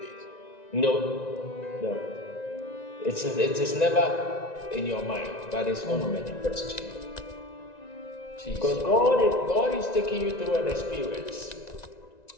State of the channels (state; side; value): late; right; 1.9 ms